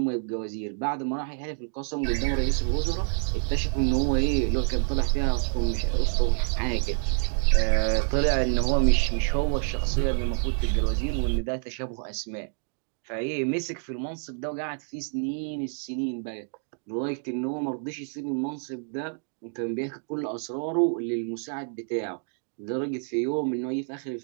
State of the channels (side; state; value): left; silent; 57 dB below the other